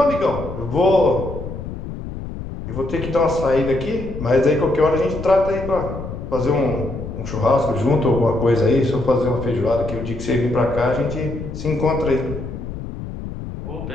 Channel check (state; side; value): noise; left; rumble, 8 dB below the sound